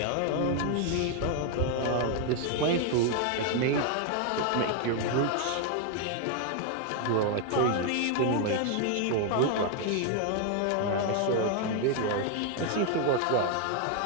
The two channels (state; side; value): different; both; correlation 0.00